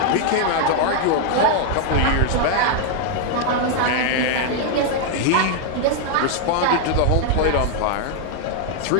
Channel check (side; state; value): both; different; correlation 0.00